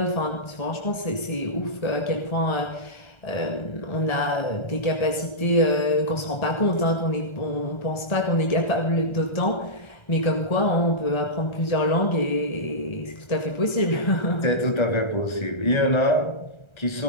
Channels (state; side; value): late; right; 1.3 ms